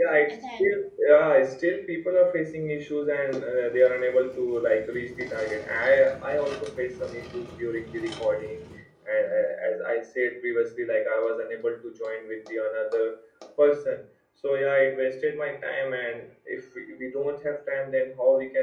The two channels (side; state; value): both; identical; correlation 1.00